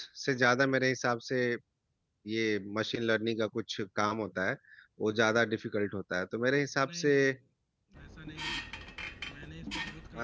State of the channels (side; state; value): both; identical; correlation 1.00